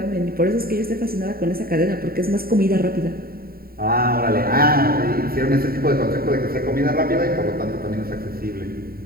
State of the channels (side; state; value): left; late; 0.43 ms